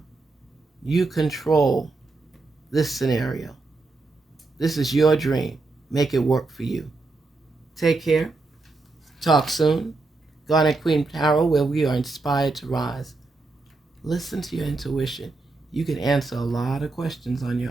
You control this scenario. This is your dream. Make it work for you. Take care. Talk soon. Garnet Queen Tarot, where we are inspired to rise. Listen to your intuition. You can answer a lot of questions on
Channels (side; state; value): left; quieter; 3.5 dB